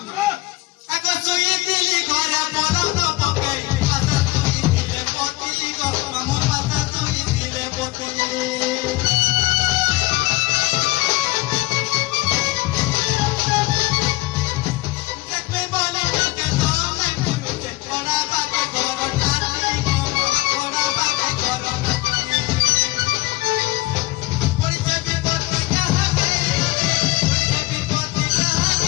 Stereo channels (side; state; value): right; quieter; 20.1 dB